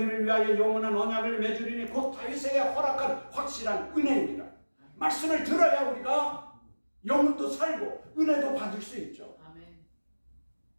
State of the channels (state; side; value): inverted; both; correlation -1.00